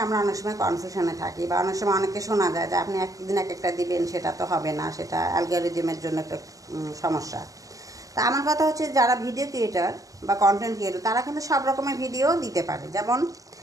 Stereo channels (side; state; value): left; late; 0.17 ms